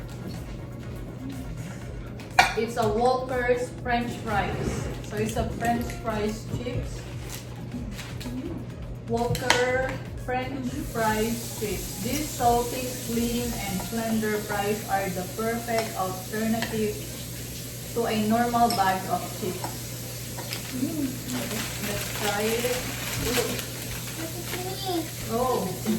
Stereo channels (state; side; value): identical; both; correlation 1.00